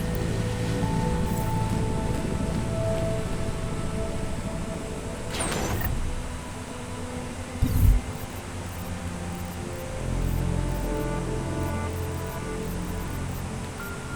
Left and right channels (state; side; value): identical; both; correlation 1.00